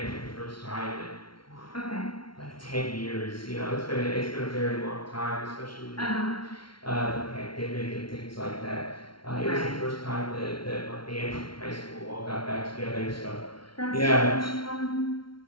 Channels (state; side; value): late; right; 0.74 ms